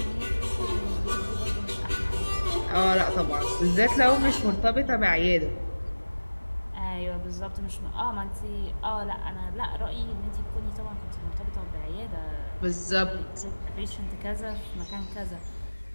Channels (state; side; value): inverted; both; correlation -1.00